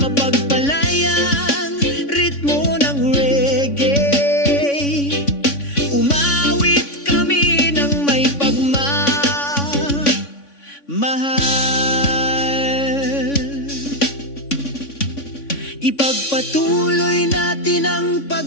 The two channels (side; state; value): right; late; 3.5 ms